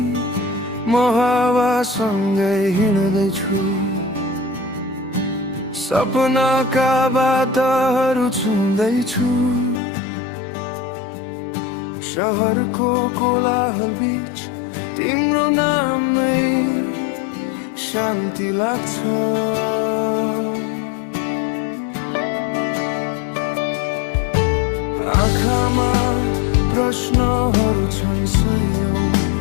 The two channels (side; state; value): right; drops out; at 9.8 s